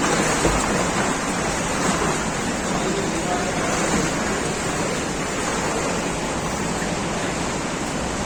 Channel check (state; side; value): identical; both; correlation 1.00